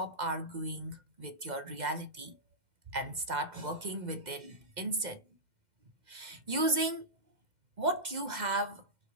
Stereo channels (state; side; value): late; left; 2.1 ms